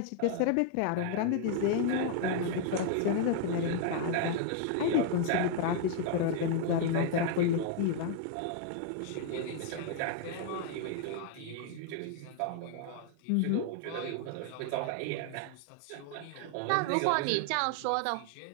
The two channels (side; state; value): both; different; correlation 0.00